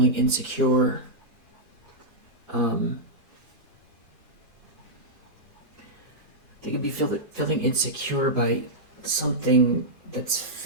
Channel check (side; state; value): both; normal; correlation -0.10